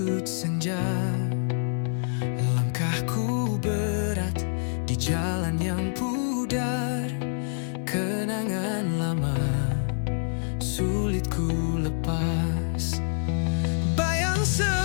senja. Langkahku berat di jalan yang pudar, kenangan lama sulit ku lepas. Bayang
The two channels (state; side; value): silent; right; digital silence